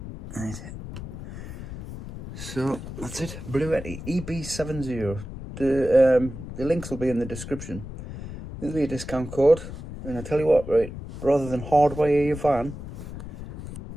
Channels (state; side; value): noise; left; rumble, 10 dB below the sound